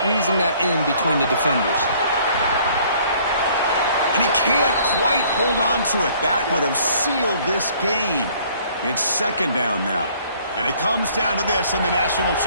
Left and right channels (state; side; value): inverted; both; correlation -0.58